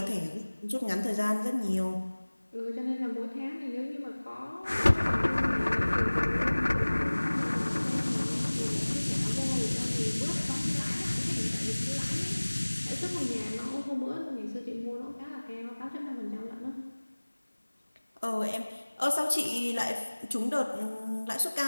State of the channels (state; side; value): inverted; both; correlation -1.00